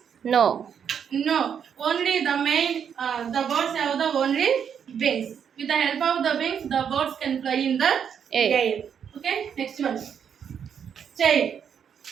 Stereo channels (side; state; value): left; quieter; 7.8 dB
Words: No. No. Only the main, the birds have the only wings. With the help of the wings, the birds can fly in the air. Okay, next one. Tail.